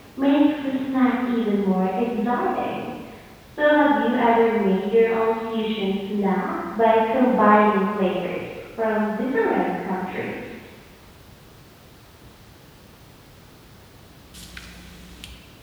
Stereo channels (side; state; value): both; identical; correlation 1.00